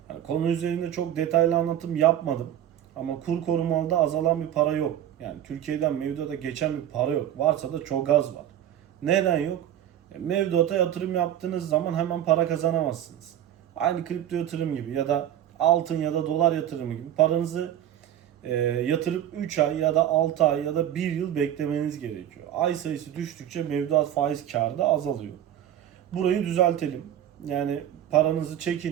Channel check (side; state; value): left; quieter; 11.1 dB